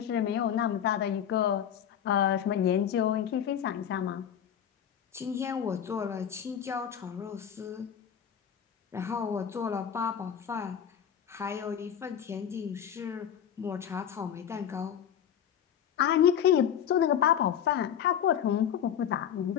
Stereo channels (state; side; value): quieter; right; 9.1 dB